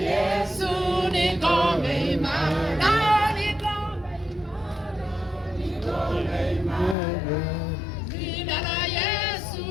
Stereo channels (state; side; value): drops out; right; at 7.0 s